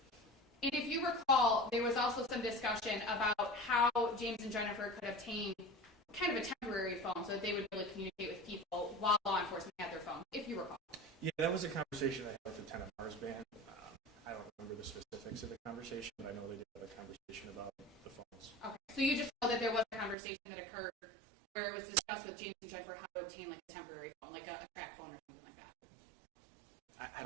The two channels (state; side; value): drops out; left; at 20.2 s